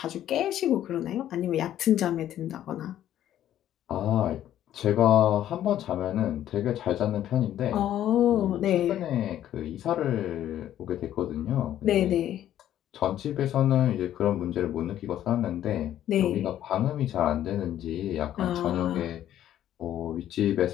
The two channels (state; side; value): quieter; right; 11.8 dB